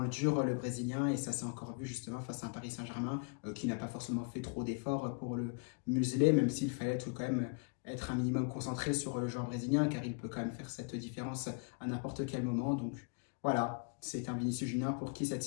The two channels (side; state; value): right; quieter; 38.7 dB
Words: le dur, le Brésilien, et ça s'est encore vu justement face à un Paris Saint-Germain qui n'a pas forcément fait trop d'efforts pour le museler, même s'il fallait être quand même être un minimum concentré sur le joueur brésilien, car il peut quand même faire cette différence à n'importe quel moment. Donc voilà, c'est un Vinicius Junior pour qui cette